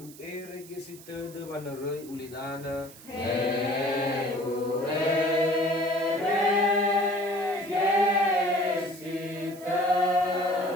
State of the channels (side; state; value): right; noise; hiss, 19 dB below the sound